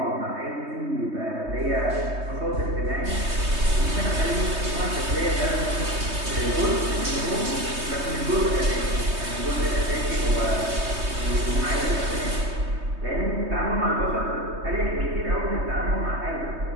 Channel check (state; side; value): late; left; 3.2 ms